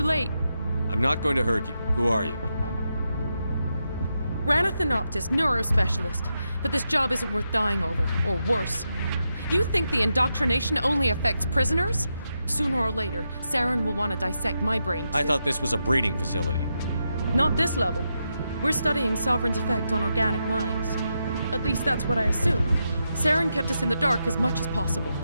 late. I'm not going to hurt you. Who are you? Ranna Thanoptis, neurospecialist. But this job isn't worth dying over, or worse. You think the indoctrination only affects prisoners? Sooner or later, Saren will want to dissect my brain too. I thought this was a breeding facility. Not this level. We're studying Sovereign's effect on organic minds. At least that's what I assumed. Saren kept us in the dark as much as possible.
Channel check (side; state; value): both; inverted; correlation -0.85